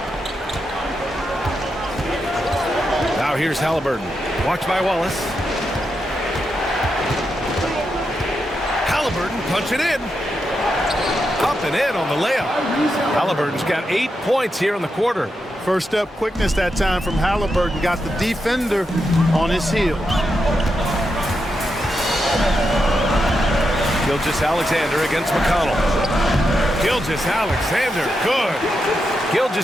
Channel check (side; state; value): both; normal; correlation 0.85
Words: Now here's Halliburton. Watched by Wallace. Halliburton punching in. Up and in on the layup. Halliburton's got 8 points here in the quarter. First step quickness that time from Halliburton. Got the defender on his heels. Gilgeous-Alexander against McConnell. Gilgeous-Alexander, good.